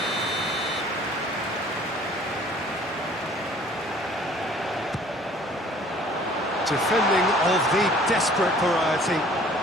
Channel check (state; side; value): normal; both; correlation 0.53